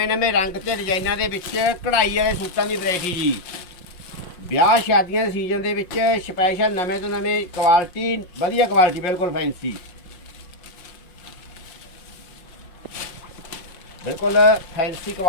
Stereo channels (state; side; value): late; right; 5.6 ms